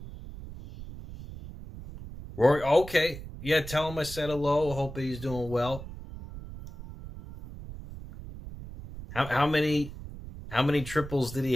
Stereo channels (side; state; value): right; noise; rumble, 13 dB below the sound